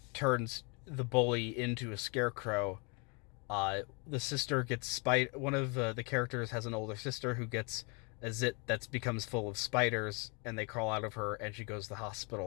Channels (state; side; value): quieter; right; 33.0 dB